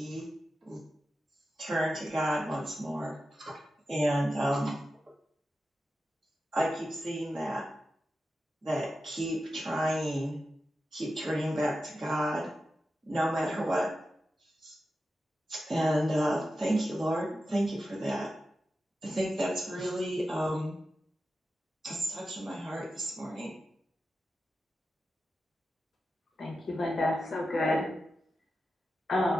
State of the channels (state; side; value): normal; both; correlation 0.91